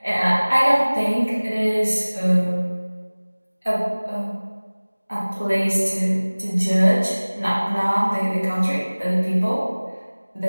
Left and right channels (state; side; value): inverted; both; correlation -1.00